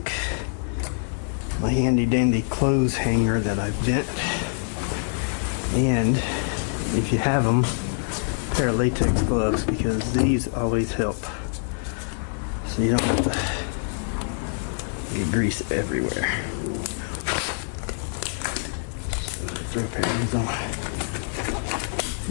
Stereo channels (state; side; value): silent; right; 62 dB below the other